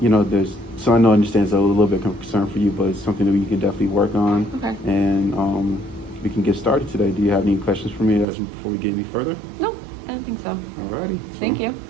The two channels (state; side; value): drops out; left; at 8.2 s